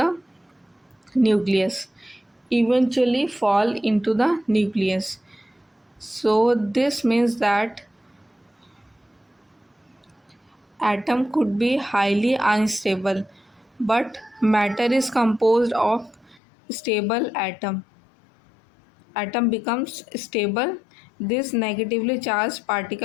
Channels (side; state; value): right; drops out; at 16.4 s